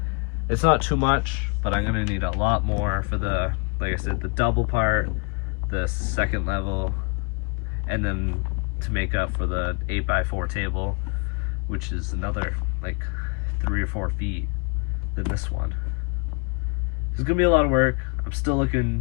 It's not too much, but I'm gonna need a lot more for the, like I said, the double part, the second level, and then to make up for the 8x4 table, which is another like 3 or 4 feet than this one. It's gonna be a lot of work. I'm still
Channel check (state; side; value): quieter; right; 33.2 dB